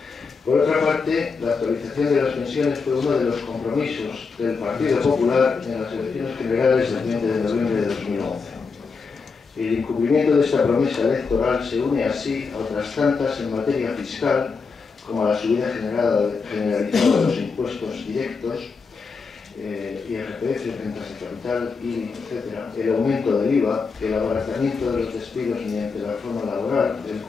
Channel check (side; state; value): right; quieter; 4.9 dB